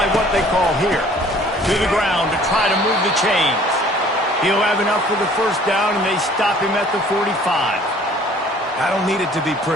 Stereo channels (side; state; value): both; normal; correlation 0.53